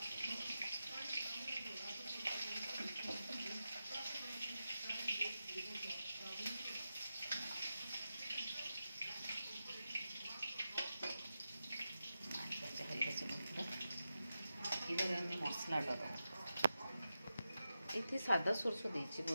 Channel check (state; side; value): inverted; both; correlation -0.90